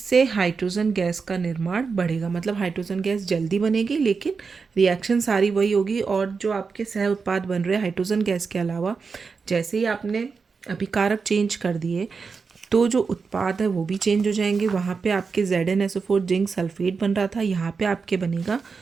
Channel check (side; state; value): left; quieter; 5.1 dB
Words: हाइड्रोजन गैस का निर्माण बढ़ेगा। मतलब हाइड्रोजन गैस जल्दी बनेगी, लेकिन रिएक्शन सारी वही होगी। और जो आपके सह उत्पाद बन रहे हैं हाइड्रोजन गैस के अलावा, जैसे ही आपने अभिकारक चेंज कर दिए तो जो उत्पाद है वो भी चेंज हो जाएंगे। वहाँ पे आपके ZnSO4 जिंक सल्फेट बन रहा था, यहाँ पे आपके बनेगा